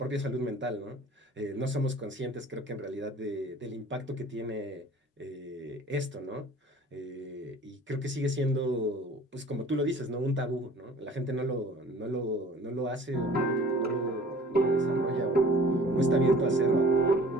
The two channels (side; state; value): both; normal; correlation 0.47